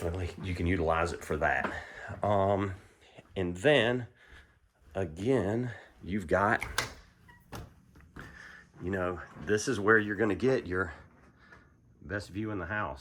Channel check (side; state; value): both; identical; correlation 1.00